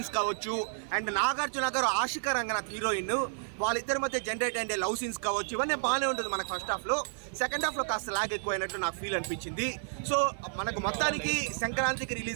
కావచ్చు, అండ్ నాగార్జున గారు ఆశిక రంగనాథ్ హీరోయిన్ వాళ్ళిద్దరి మధ్య జనరేట్ అయ్యే లవ్ సీన్స్ కావచ్చు, ఇవన్నీ బాగానే ఉంటుంది మనకు ఫస్ట్ హాఫ్లో. సెకండ్ హాఫ్లో కాస్త లాగ్ ఎక్కువ అయినట్టు నాకు ఫీల్ అనిపించింది. సో మనకు మొత్తానికి సంక్రాంతికి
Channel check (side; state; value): left; silent; digital silence